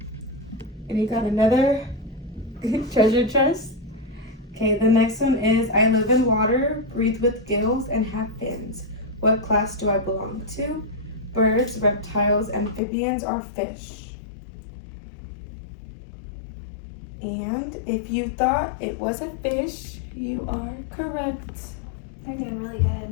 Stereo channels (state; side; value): drops out; right; at 12.8 s